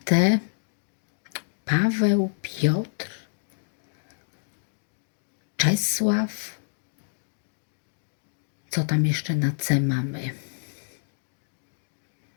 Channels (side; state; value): right; silent; digital silence